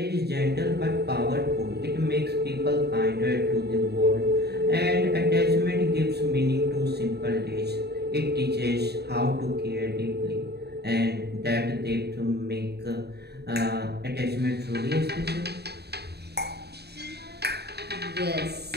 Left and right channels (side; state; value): left; late; 0.48 ms